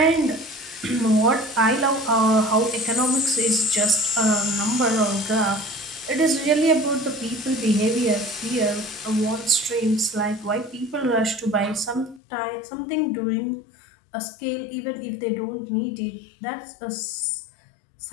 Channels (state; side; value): drops out; right; at 12.2 s